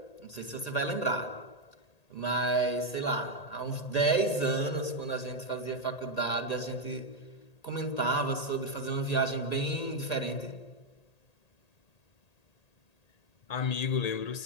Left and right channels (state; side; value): late; right; 1.8 ms